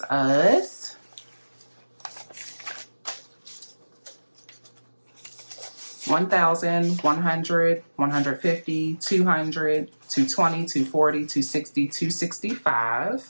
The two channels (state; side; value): inverted; both; correlation -1.00